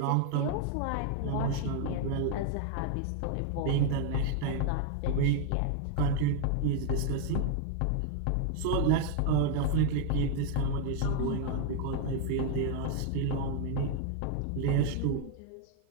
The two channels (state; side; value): different; both; correlation 0.00